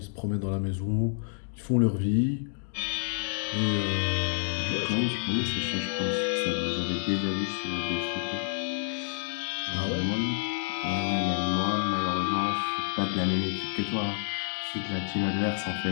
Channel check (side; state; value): right; silent; digital silence